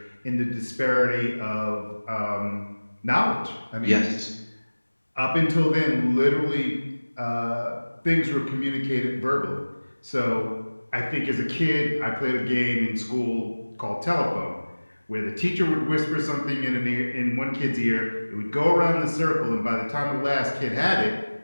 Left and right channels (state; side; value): inverted; both; correlation -1.00